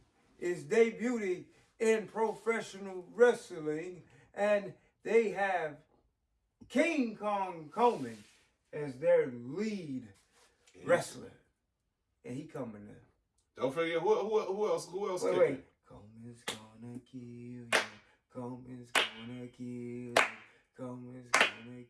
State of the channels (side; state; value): both; identical; correlation 1.00